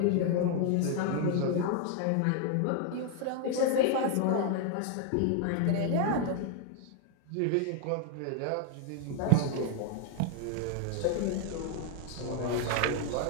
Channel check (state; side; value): different; both; correlation 0.00